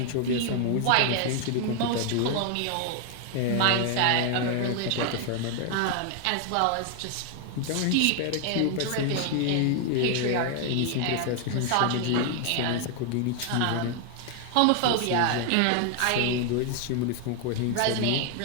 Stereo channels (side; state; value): both; different; correlation 0.00